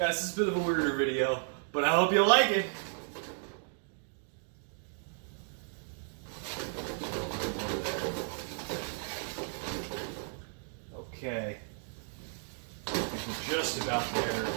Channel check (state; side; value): silent; left; 55 dB below the other